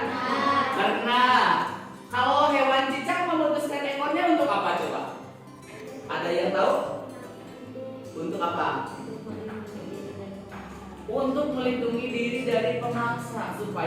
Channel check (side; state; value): both; identical; correlation 1.00